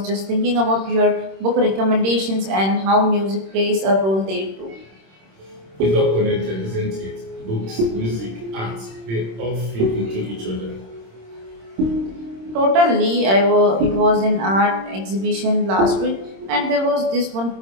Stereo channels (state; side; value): late; left; 26 ms